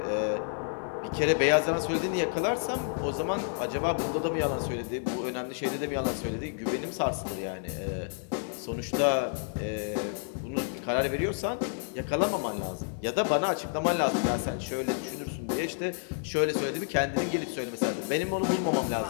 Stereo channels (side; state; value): right; silent; 55 dB below the other